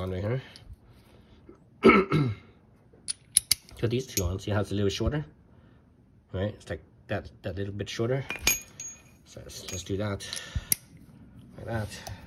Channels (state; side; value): identical; both; correlation 1.00